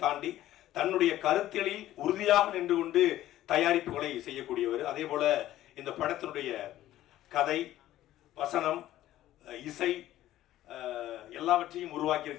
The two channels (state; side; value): quieter; right; 13.9 dB